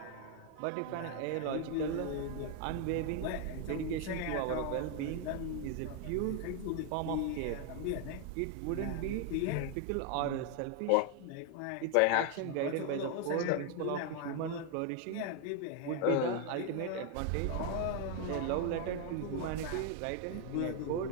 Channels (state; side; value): different; both; correlation 0.00